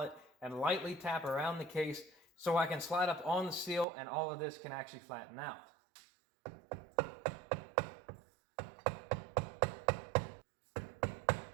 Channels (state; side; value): drops out; left; at 3.9 s